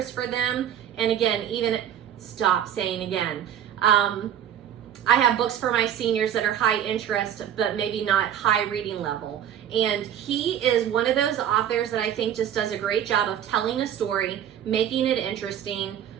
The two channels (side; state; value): left; quieter; 9.9 dB